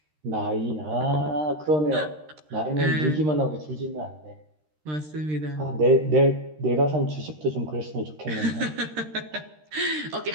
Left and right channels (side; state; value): left; late; 13 ms